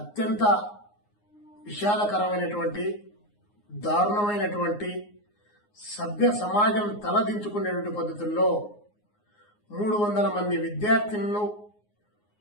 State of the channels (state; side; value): late; right; 9.6 ms